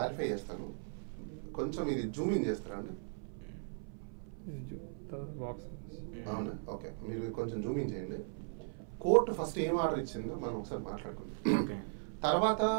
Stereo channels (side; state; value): left; silent; 53 dB below the other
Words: చేస్తాను, కొంచెం ఇది జూమ్ ఇన్ చేస్తారా అండి? అవునా, ఓకే. మీరు కొంచెం జూమ్ ఇన్ చేయండి. కోర్టు ఫస్ట్ ఏం ఆర్డర్ ఇచ్చిందో మనం ఒకసారి మాట్లాడుకుందాం. తర్వాత